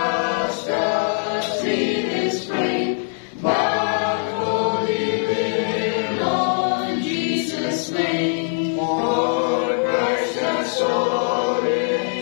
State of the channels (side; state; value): right; silent; 63 dB below the other